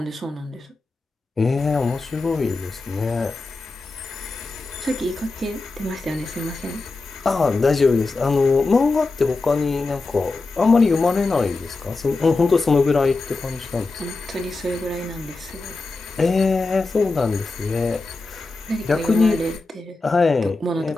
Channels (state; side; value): quieter; right; 3.5 dB